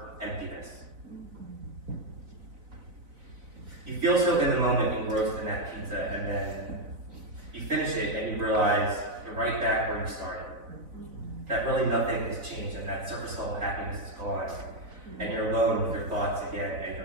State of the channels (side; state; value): left; late; 4.1 ms